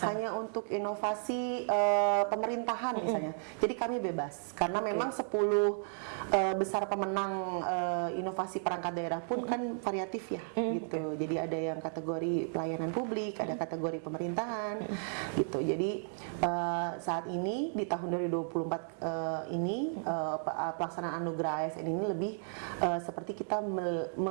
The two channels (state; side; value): silent; left; digital silence